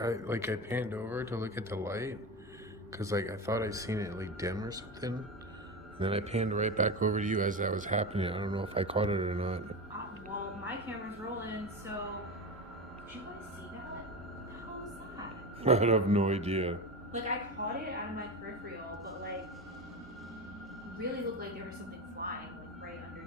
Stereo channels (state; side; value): normal; both; correlation 0.22